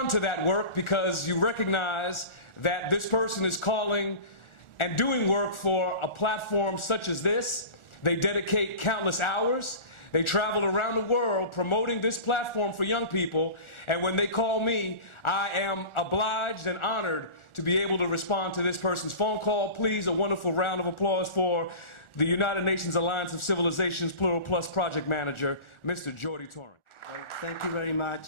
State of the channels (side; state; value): right; late; 1.4 ms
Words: to that work because you recognize that this person is calling and doing work for a platform such as this. They dedicate countless hours. They travel around the world promoting this platform for young people. And when they call me, I am obliged and honored to be able to respond to this person's phone call. Please, a wonderful round of applause for the United Nations Alliance of Civilizations Plural Plus project manager, Mr. Jordi Torrent. Well, thank you very